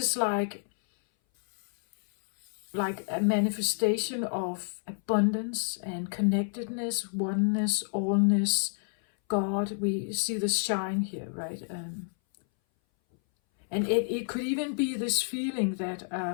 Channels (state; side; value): silent; right; 58 dB below the other